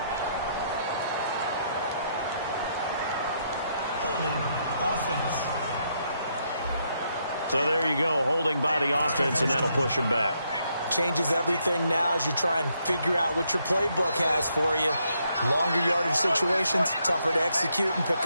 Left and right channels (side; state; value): both; inverted; correlation -0.76